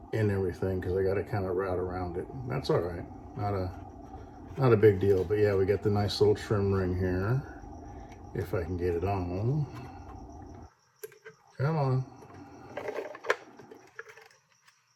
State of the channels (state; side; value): identical; both; correlation 1.00